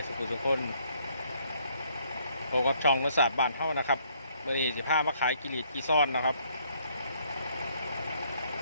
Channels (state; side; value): inverted; both; correlation -0.67